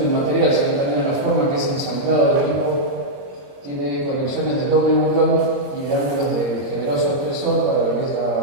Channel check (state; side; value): late; left; 22 ms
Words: material, sino también a la forma que es ensamblado el equipo, tiene conexiones de doble buclón y de ángulos de generoso espesor para lo que es